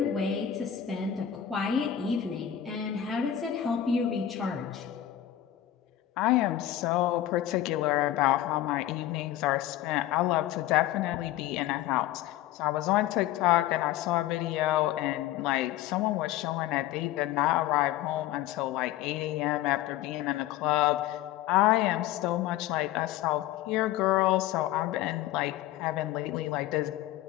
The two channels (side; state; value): right; quieter; 12.4 dB